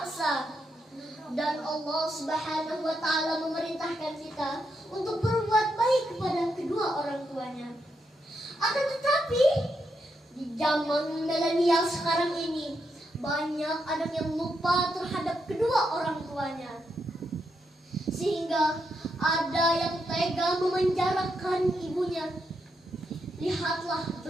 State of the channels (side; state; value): both; normal; correlation 0.82